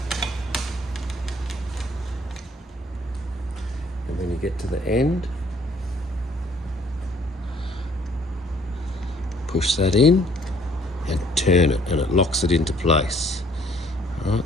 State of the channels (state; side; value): normal; both; correlation 0.61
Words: And when you get to the end, push that in and turn it, and it locks it into place. All right,